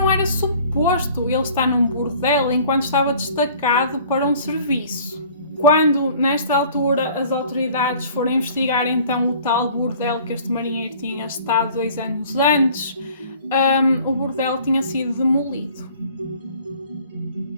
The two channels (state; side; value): inverted; both; correlation -0.51